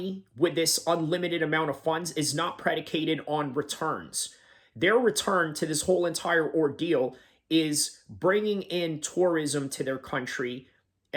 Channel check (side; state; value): both; identical; correlation 1.00